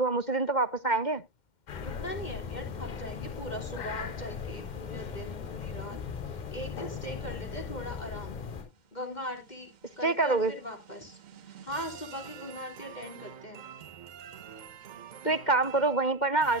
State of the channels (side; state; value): right; late; 2.1 ms